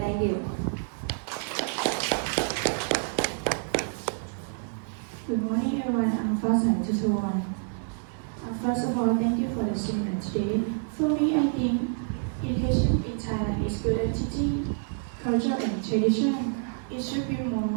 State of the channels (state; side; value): silent; left; 59 dB below the other